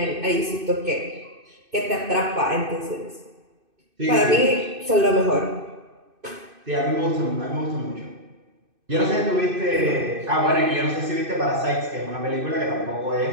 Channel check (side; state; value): left; late; 2.6 ms